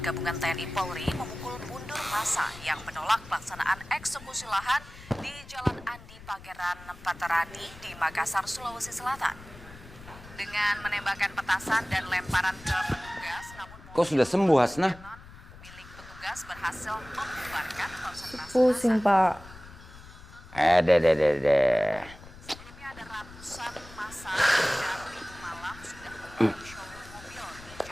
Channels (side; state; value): left; noise; rumble, 18 dB below the sound